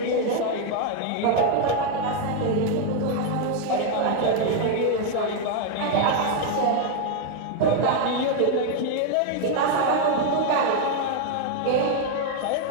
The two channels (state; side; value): different; both; correlation 0.01